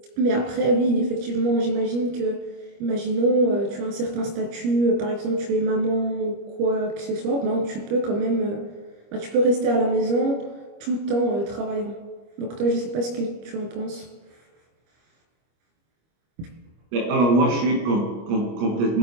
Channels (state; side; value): late; left; 25 ms